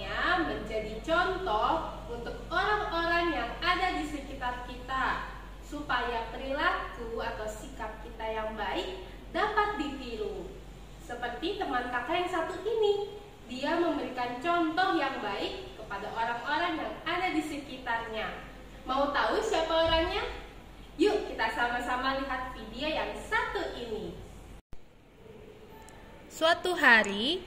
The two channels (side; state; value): both; identical; correlation 1.00